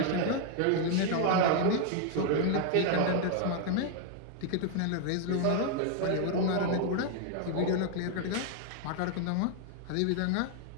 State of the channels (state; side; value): different; both; correlation 0.00